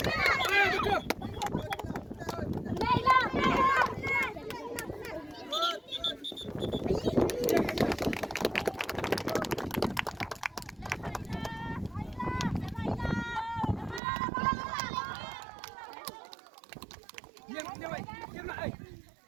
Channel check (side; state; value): left; drops out; at 14.0 s